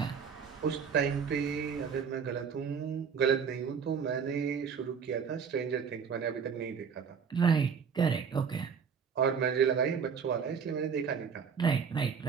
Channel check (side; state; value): left; quieter; 6.5 dB